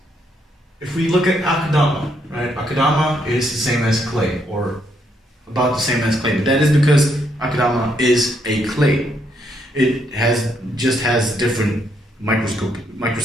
if we look at akadama, right? Akadama is the same as clay, or about the same as clay. But that is because akadama is a clay. It just has different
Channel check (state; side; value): normal; both; correlation 0.74